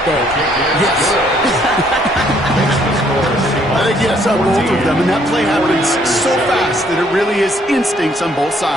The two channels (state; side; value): normal; both; correlation 0.66